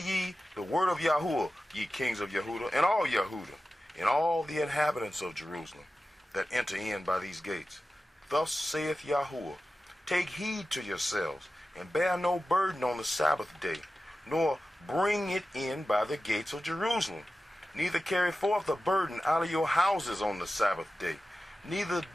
the word of Yahuwah, ye kings of Yahudah, and all Yahudah, and all the inhabitants of Jerusalem, that enter in by these gates. Thus saith Yahuwah, take heed to yourselves, and bear no burden on the Sabbath day, nor bring it in by the gates of Jerusalem. Neither carry forth a burden out of your houses on the Sabbath day. Neither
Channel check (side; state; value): both; normal; correlation 0.94